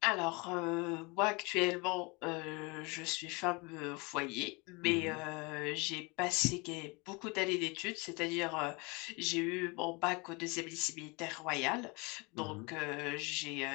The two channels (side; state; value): right; quieter; 27.8 dB